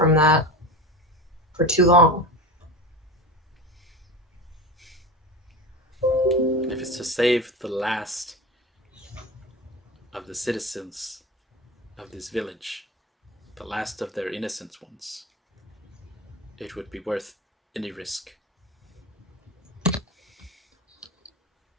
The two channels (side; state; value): both; normal; correlation 0.27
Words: that for too long. if it's to save the last of the citizens of this village, the last of their innocent ones, it would be worth any risk.